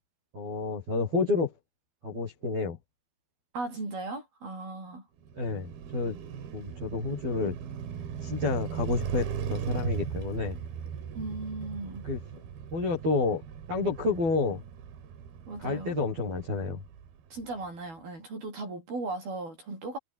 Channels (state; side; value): late; left; 12 ms